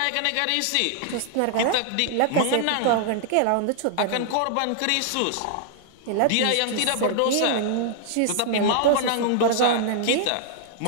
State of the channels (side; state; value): both; different; correlation -0.01